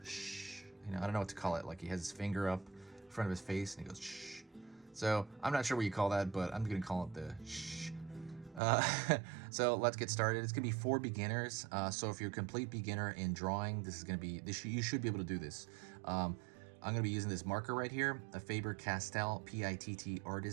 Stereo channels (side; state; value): left; drops out; at 8.6 s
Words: shh. I don't know what to call it. Like he has his finger up in front of his face and he goes shh. So I'm not sure what you call that, but I'm going to call it the shh. So let's get started. It's going to be for beginners. So if you're a complete beginner in drawing, this is going to be, you should be able to do this. I'm going to be using this marker right here, a Faber-Castell PITT